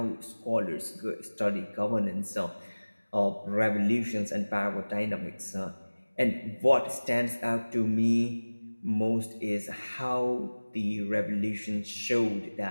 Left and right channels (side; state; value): both; inverted; correlation -1.00